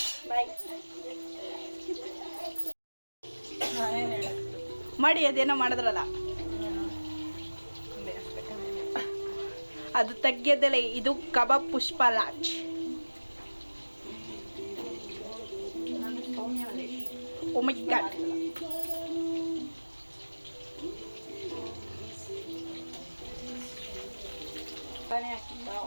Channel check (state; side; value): inverted; both; correlation -1.00